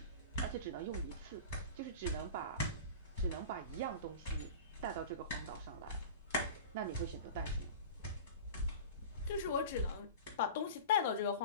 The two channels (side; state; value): both; inverted; correlation -0.34